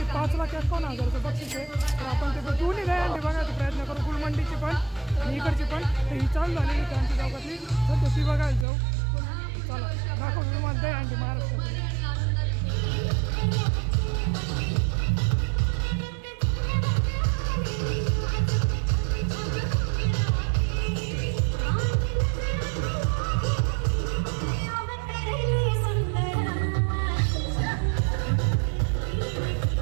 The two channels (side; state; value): left; drops out; at 8.7 s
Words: 5,51,000 बक्षीस आहे. तर आपण ते दोन्ही दहीहंडी बघायचा प्रयत्न करू, गुलमंडीची पण आणि इकडची पण. तर ही चालू झालेली क्रांती चौकातली, सध्या ती बघायला जाऊ. चला दाखवतो तुम्हाला दहीहंडी महाराष्ट्रातली.